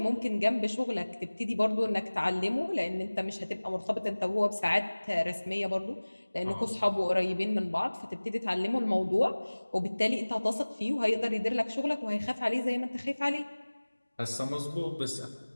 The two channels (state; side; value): inverted; both; correlation -1.00